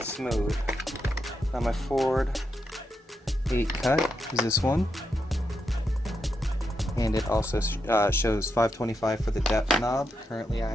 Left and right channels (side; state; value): both; normal; correlation 0.84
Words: smooth. Now my Ford 8 cut is this one, and it also shows 525 for the depth knob. Currently I